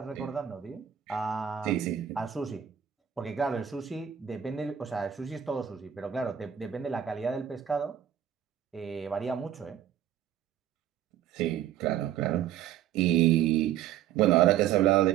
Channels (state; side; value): quieter; left; 10.2 dB